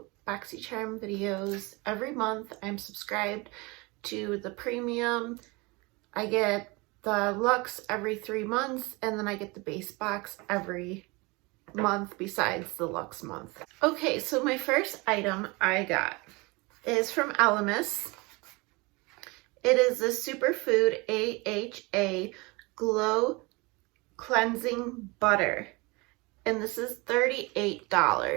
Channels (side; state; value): left; quieter; 25.9 dB